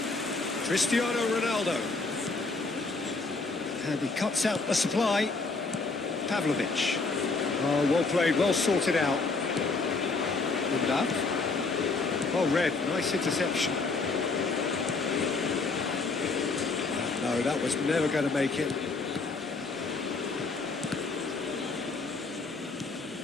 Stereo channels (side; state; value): right; quieter; 3.9 dB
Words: Cristiano Ronaldo. And he cuts out the supply. Pavlovic. Oh, well played, well sorted out. Love. Well read, nice interception. No, that was never going to make it.